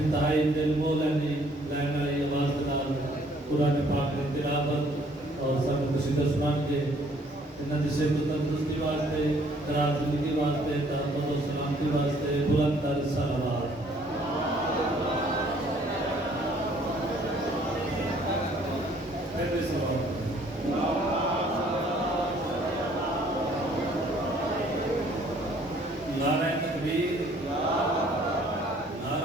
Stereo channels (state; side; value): normal; both; correlation 0.60